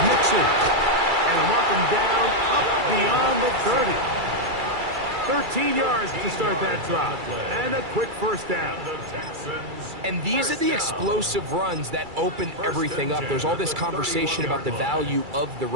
Mixon. And a mark him down up beyond the 30. 13 yards to start that drop. And a quick first down. And these are the explosive runs that open everything up. There's all this conversation about the value of the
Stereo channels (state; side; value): late; left; 2.3 ms